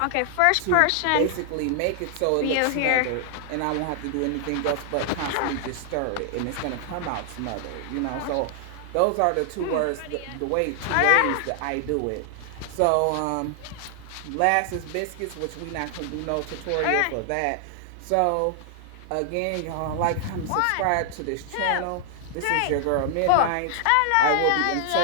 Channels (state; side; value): different; both; correlation 0.00